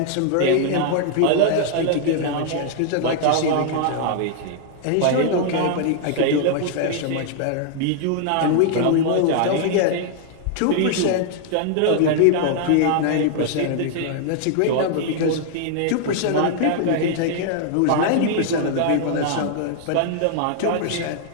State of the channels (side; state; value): both; different; correlation 0.00